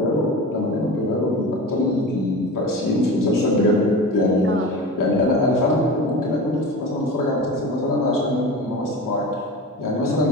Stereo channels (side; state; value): both; normal; correlation 0.31